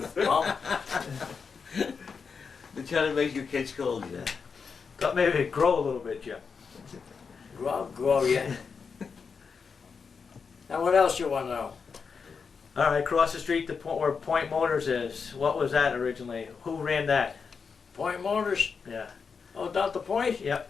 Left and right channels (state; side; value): quieter; right; 5.6 dB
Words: Well, They're trying to make your kids cold, yeah. Thought maybe it'd grow a little bit, Jim. grow yet. Now what else you wanna know? All right, across the street, where Point Motors is. What was that originally? Who ran that? Point Motors? Yeah. Oh, down the Point? Yep.